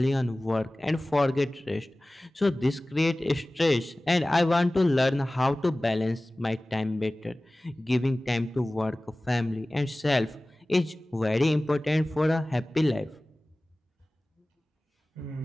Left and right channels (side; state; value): both; normal; correlation 0.98